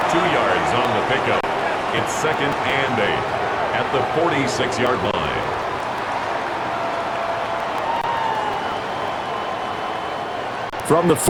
2 yards on the pickup. It's second and 8 at the 46-yard line. From the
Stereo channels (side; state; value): both; identical; correlation 1.00